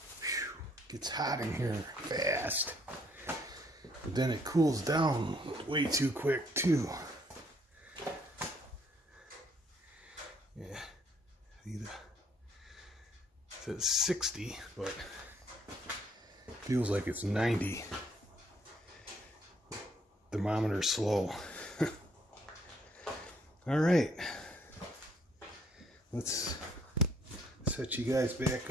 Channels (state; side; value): normal; both; correlation 0.66